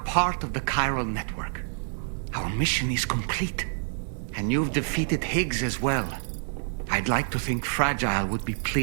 of the chiral network. Our mission is complete. And you've defeated Higgs as well. I'd like to think Fragile would be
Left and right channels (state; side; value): silent; left; digital silence